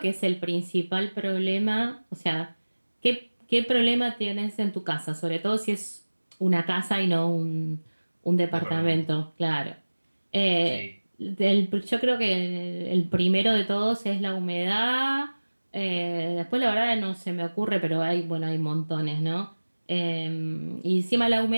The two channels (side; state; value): both; inverted; correlation -1.00